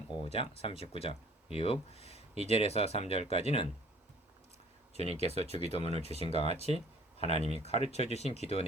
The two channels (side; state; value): both; normal; correlation 0.53